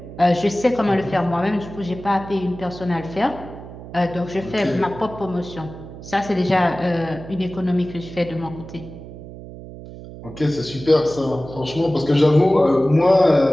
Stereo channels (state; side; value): noise; right; hum, 14 dB below the sound